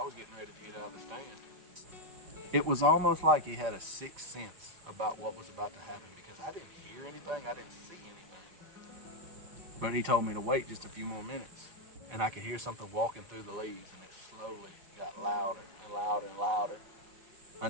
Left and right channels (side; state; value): left; late; 5.5 ms